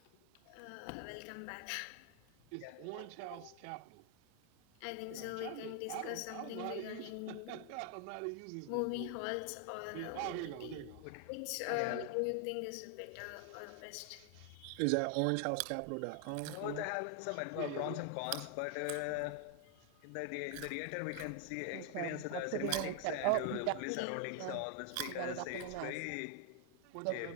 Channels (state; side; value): different; both; correlation 0.00